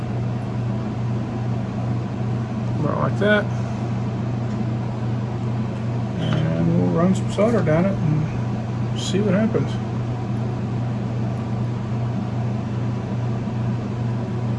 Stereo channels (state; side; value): identical; both; correlation 1.00